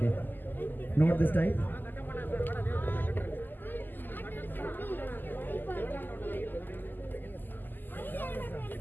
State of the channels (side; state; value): right; late; 0.089 ms